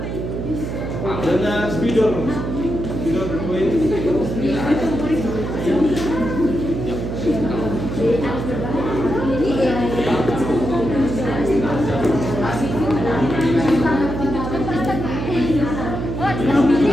Dengan spidol berpoin.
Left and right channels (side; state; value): right; noise; hum, 4 dB below the sound